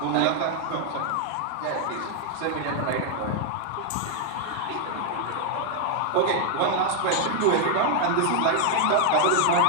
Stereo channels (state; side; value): different; both; correlation 0.00